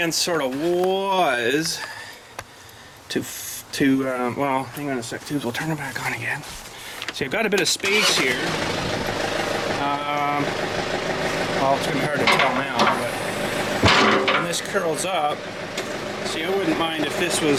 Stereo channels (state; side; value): identical; both; correlation 1.00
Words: sort of was to well, hang on a sec, tubes, we'll turn it back on again. See, I've got a bit of space here. Well, it's gonna be hard to tell now, but when this curls up, see, I wouldn't mind if this